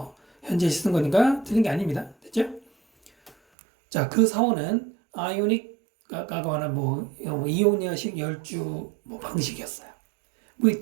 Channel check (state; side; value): drops out; left; at 3.4 s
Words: 현재시 쓴 거니까 틀린 게 아닙니다. 됐죠? 자, 그 사원은 아이오닉과 관한 이오니아식 열주 방식이었어요.